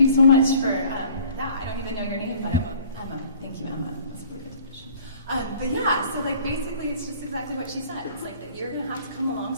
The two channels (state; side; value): inverted; both; correlation -0.52